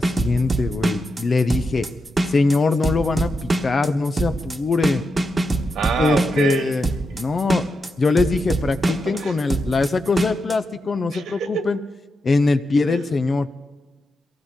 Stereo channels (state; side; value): normal; both; correlation 0.87